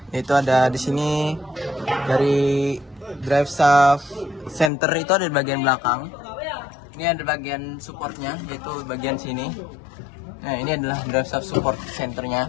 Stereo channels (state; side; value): drops out; right; at 4.7 s